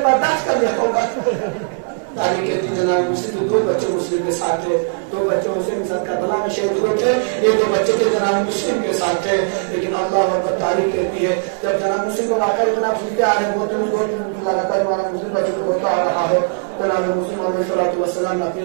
برداشت کر لیا ہوگا۔ تاریخ کہتی جناب مسلم کے 2 بچے مسلم کے ساتھ تھے، 2 بچے حسین کے ساتھ کربلا میں شہید ہوئے تھے، یہ 2 بچے تھے جناب مسلم کے ساتھ تھے، لیکن اللہ اکبر تاریخ کہتی ہے جب جناب مسلم کو واقعہ جناب سنتے آ رہے ہیں بہت لگاتار ہمارا مسلم بچے کو بولتا آ رہا ہے، جناب مسلم علیہ السلام نے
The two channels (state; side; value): silent; left; 67 dB below the other